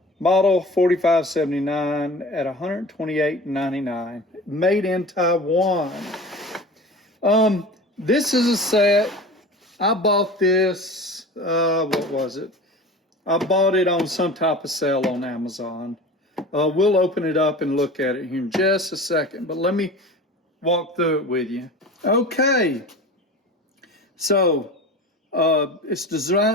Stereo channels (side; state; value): both; normal; correlation 0.36